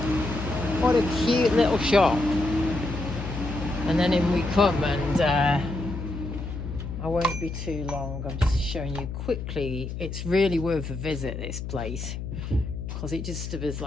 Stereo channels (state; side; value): noise; left; hum, 7 dB below the sound